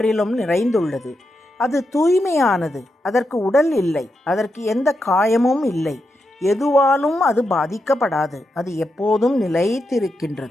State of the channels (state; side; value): normal; both; correlation 0.85